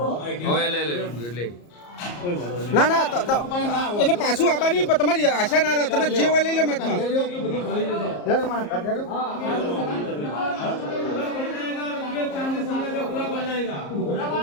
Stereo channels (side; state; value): right; late; 34 ms